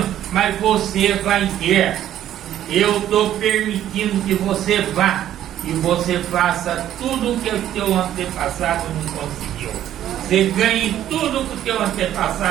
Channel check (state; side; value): quieter; left; 11.7 dB